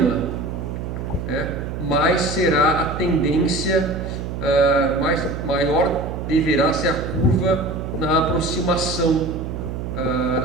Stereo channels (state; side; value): noise; right; hum, 6 dB below the sound